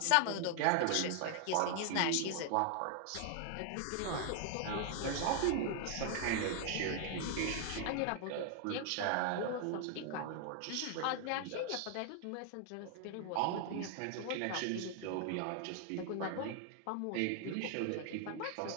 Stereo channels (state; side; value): different; both; correlation 0.00